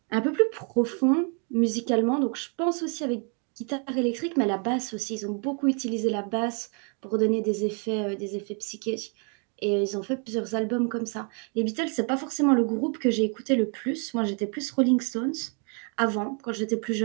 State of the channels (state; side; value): quieter; left; 39.1 dB